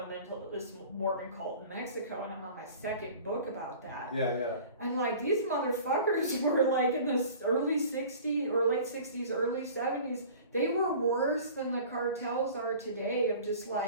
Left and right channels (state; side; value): inverted; both; correlation -0.43